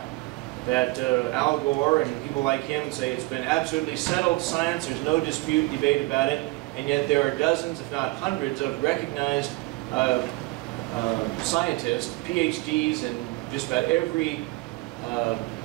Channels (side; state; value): left; quieter; 22.3 dB